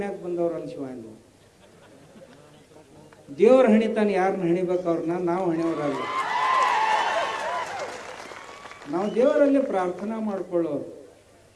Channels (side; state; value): both; identical; correlation 1.00